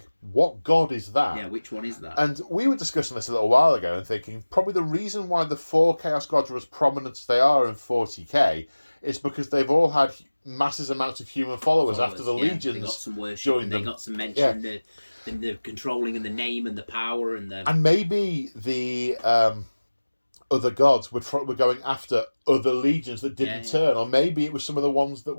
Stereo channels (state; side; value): inverted; both; correlation -1.00